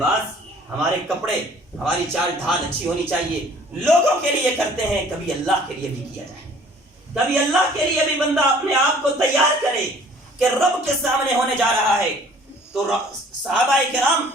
ہمارے کپڑے، ہماری چال ڈھال اچھی ہونی چاہیے، لوگوں کے لیے کرتے ہیں، کبھی اللہ کے لیے بھی کیا جائے، کبھی اللہ کے لیے بھی بندہ اپنے آپ کو تیار کرے، کہ رب کے سامنے ہونے جا رہا ہے، تو صحابہ کرام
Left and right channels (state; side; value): normal; both; correlation 0.53